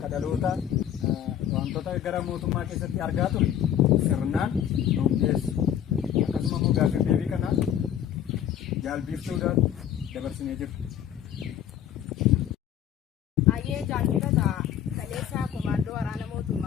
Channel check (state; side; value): quieter; right; 10.0 dB